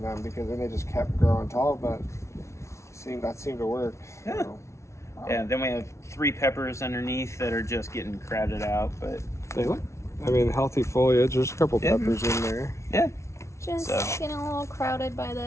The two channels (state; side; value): late; right; 0.13 ms